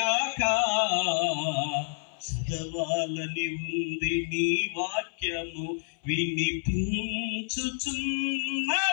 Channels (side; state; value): right; silent; 59 dB below the other